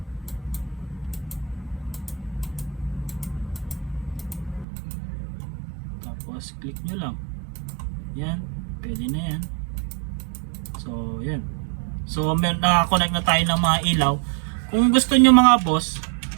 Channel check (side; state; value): left; drops out; at 4.7 s